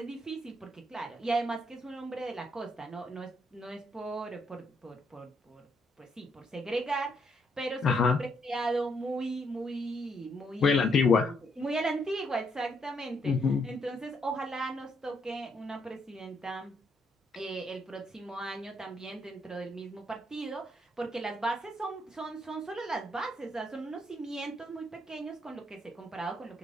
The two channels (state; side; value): normal; both; correlation 0.74